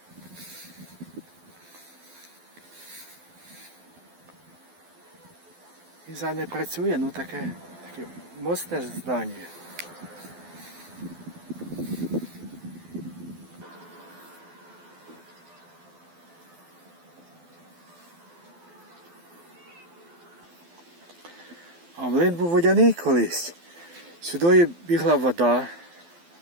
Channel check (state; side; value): late; left; 12 ms